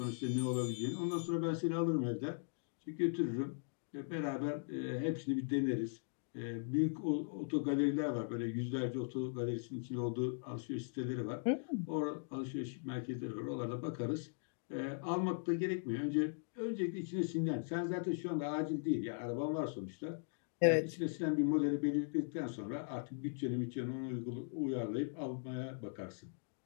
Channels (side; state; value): right; silent; digital silence